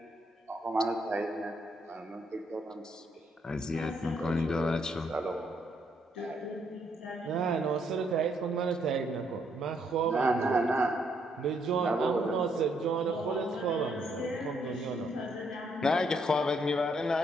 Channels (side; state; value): both; normal; correlation 0.73